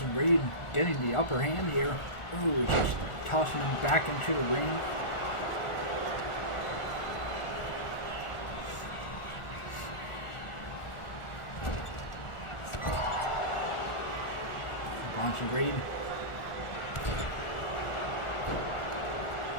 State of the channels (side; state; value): right; late; 1.4 ms